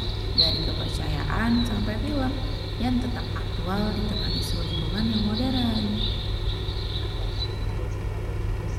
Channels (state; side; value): identical; both; correlation 1.00